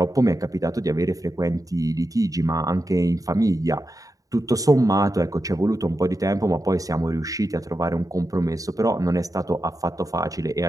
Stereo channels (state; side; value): late; left; 0.17 ms